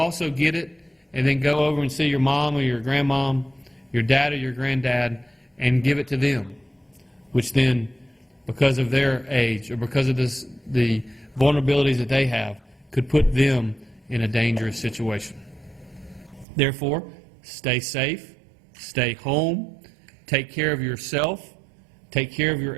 get it and then go over and see your mom or your grandmom, your dad or your granddad, and give it to them, which then, because of their age or because of the vulnerabilities that they have, could put them in a dangerous situation. Therefore, stay safe, stay home, take care of yourself, take care of your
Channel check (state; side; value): drops out; left; at 16.4 s